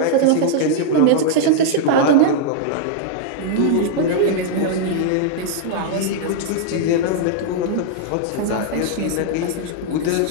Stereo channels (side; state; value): both; different; correlation -0.01